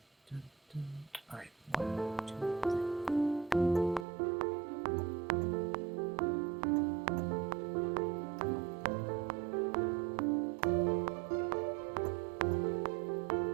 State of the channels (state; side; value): drops out; left; at 4.0 s